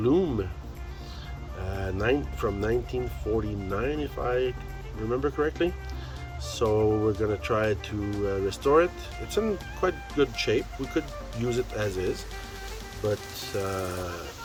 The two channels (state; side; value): identical; both; correlation 1.00